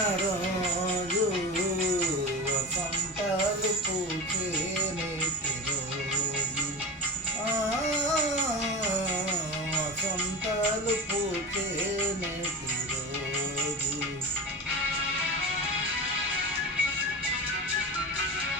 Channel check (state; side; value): normal; both; correlation 0.28